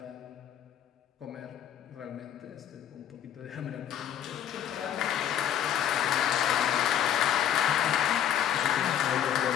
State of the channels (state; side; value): quieter; right; 10.0 dB